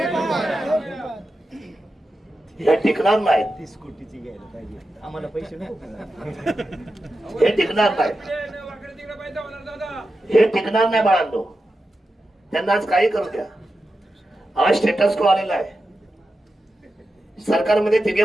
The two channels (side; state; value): both; normal; correlation 0.90